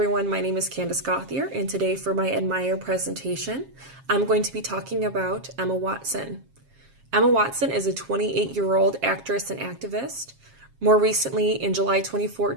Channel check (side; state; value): left; late; 7.4 ms